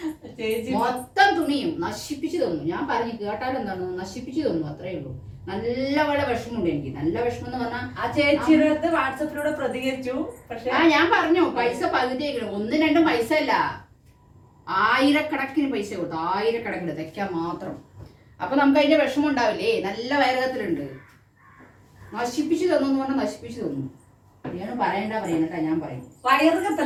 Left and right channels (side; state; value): both; identical; correlation 1.00